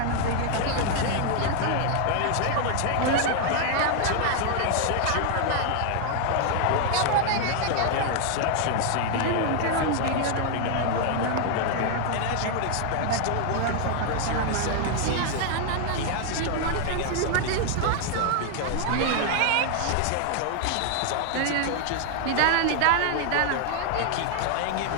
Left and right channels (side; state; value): both; different; correlation 0.00